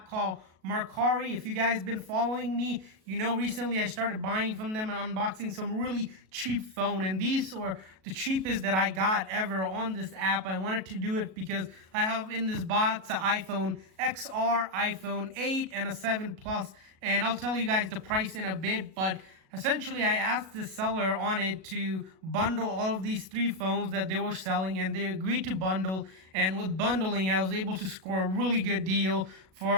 called Mercari. If you guys been following me, you know recently I started buying from them and unboxing some really cheap phone. And these were the cheapest that I got ever on this app. I wanted to do it because I have in this box an iPhone XR, iPhone 8, and a 7 Plus. And I'll tell you guys the price in a bit, but essentially, I asked the seller on it to bundle all of these 3 phones that they were selling, and they agreed to bundle. And with bundling, I was able to score a really good deal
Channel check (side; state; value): left; late; 37 ms